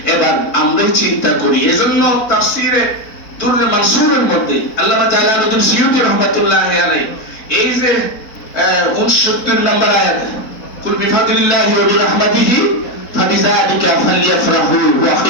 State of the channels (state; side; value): late; right; 4.1 ms